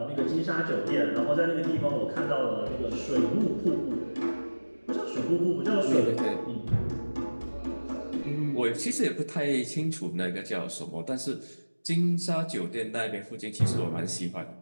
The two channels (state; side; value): inverted; both; correlation -1.00